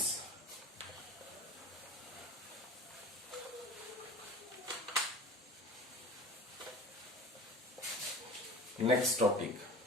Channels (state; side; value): normal; both; correlation 0.38